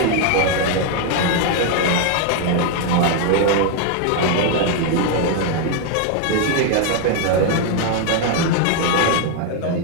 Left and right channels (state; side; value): different; both; correlation 0.00